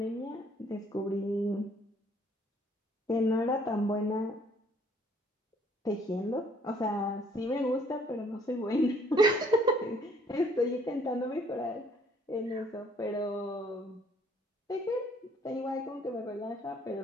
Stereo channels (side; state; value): both; normal; correlation 0.61